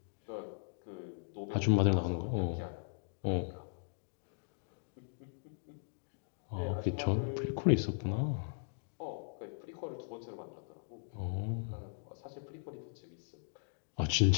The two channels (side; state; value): right; silent; digital silence